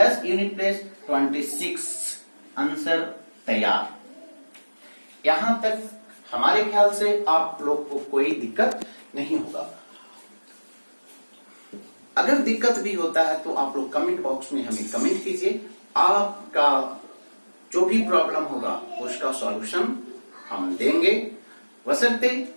unit place 26, answer तैयार। यहां तक हमारे ख्याल से आप लोग को कोई दिक्कत नहीं होगा। अगर दिक्कत भी होता है तो आप लोग कमेंट बॉक्स में हमें कमेंट कीजिए, आपका जो भी प्रॉब्लम होगा उसका सॉल्यूशन हम देंगे, बशर्ते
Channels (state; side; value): inverted; both; correlation -1.00